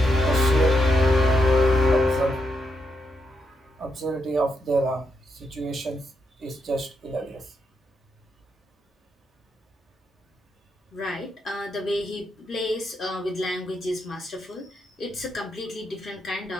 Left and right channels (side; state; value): both; normal; correlation 0.81